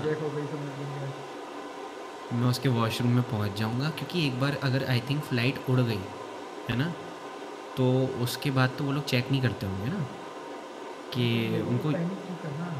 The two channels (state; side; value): identical; both; correlation 1.00